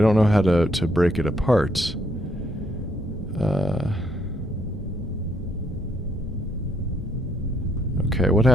don't know how to break it apart. Okay, what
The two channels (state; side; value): normal; both; correlation 0.71